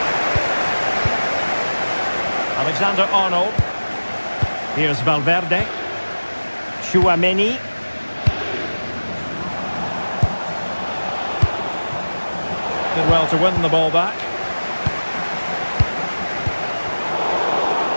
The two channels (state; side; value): inverted; both; correlation -1.00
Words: Alexander-Arnold. Here's Valverde. Tchouaméni. Did well to win the ball back.